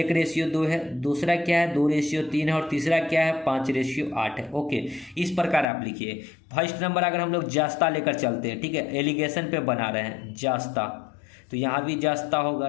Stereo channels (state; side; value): drops out; right; at 5.7 s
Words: है, दूसरा क्या है 2:3 है, और तीसरा क्या है 5:8 है। ओके, इस प्रकार आप लिखिए। फर्स्ट नंबर अगर हम लोग जस्ता लेकर चलते हैं, ठीक है, एलिगेशन पे बना रहे हैं जस्ता, तो यहाँ भी जस्ता